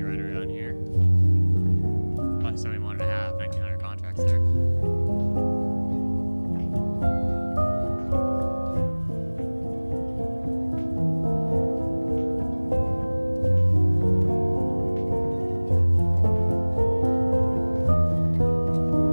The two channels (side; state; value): both; inverted; correlation -1.00